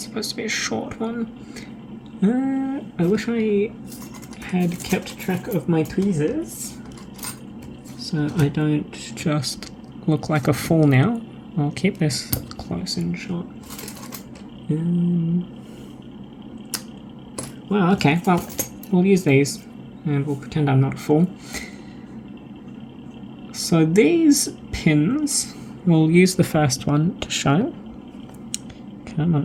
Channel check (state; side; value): identical; both; correlation 1.00